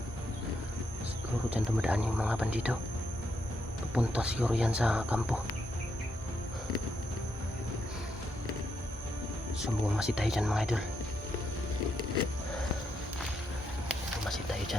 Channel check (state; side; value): normal; both; correlation 0.80